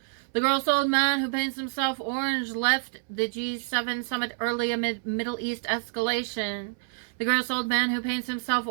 The gross old man who paints himself orange left the G7 summit early amid Middle East escalation. The gross old man who paints himself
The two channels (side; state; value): left; silent; 60 dB below the other